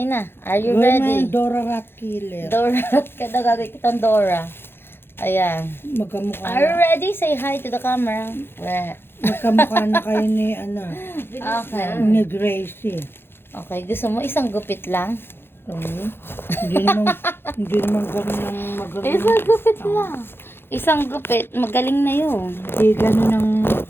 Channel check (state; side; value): late; right; 0.11 ms